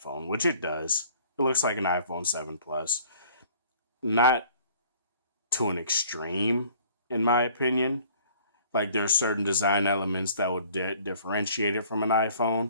which it does. It looks like an iPhone 7 Plus. Not to an extreme, in my opinion. Like, there are certain design elements that would differentiate it from an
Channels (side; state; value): both; inverted; correlation -0.54